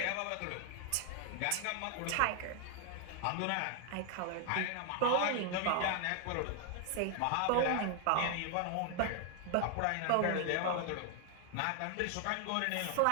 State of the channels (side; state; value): both; different; correlation 0.00